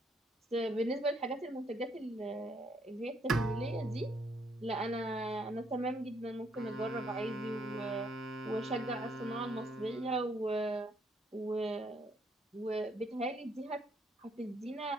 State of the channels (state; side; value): normal; both; correlation 0.70